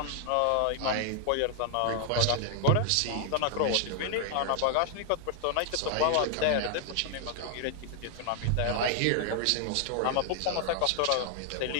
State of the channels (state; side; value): different; both; correlation 0.00